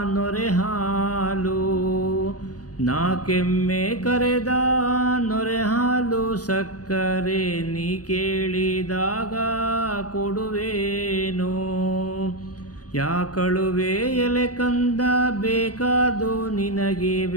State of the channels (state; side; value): late; right; 0.68 ms